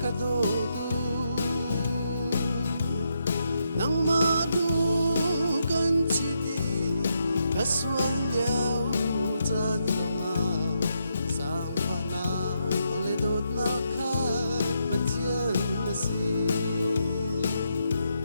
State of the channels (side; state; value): both; inverted; correlation -0.80